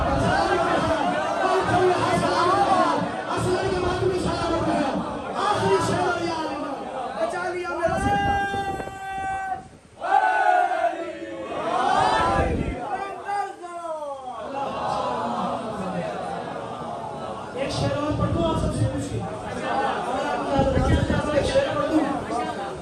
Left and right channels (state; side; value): identical; both; correlation 1.00